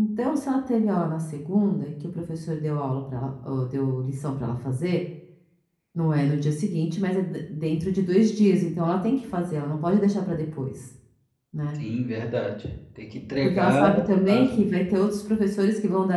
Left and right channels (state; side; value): identical; both; correlation 1.00